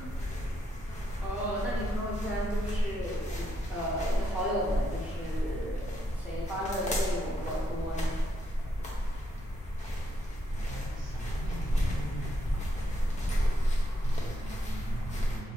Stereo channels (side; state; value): both; normal; correlation 0.78